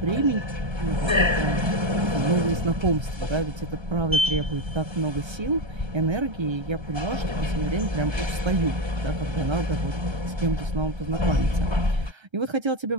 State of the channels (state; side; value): late; left; 1.3 ms